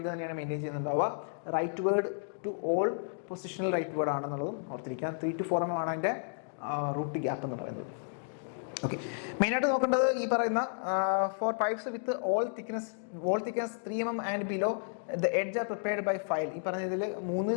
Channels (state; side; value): silent; right; digital silence